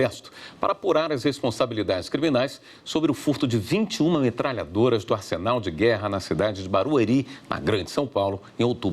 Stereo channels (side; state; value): both; identical; correlation 1.00